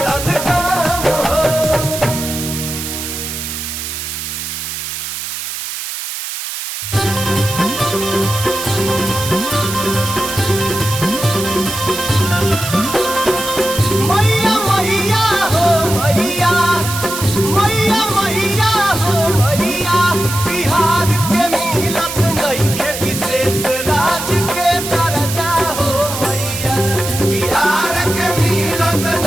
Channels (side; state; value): right; noise; hiss, 6 dB below the sound